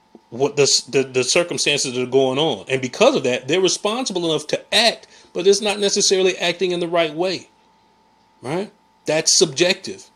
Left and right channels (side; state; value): both; identical; correlation 1.00